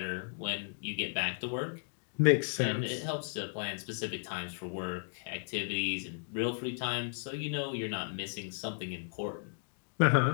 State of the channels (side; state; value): right; silent; digital silence